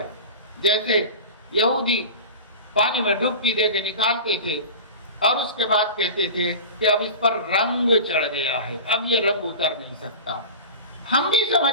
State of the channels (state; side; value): inverted; both; correlation -0.33